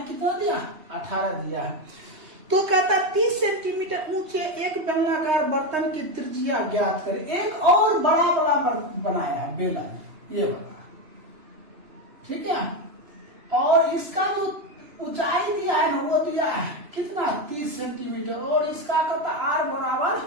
कितना दिया 18 दिया है। तो कहता 30 सेंटीमीटर ऊंचे एक बेलनाकार बर्तन की त्रिज्या ज्ञात करें। एक और बड़ा बनाया है बेलन, ये बड़ा, ठीक है। और इसका जो ऊंचाई दिया है ना वो दिया है कितना 30 सेंटीमीटर, और इसका कहता R बराबर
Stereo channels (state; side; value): late; left; 3.2 ms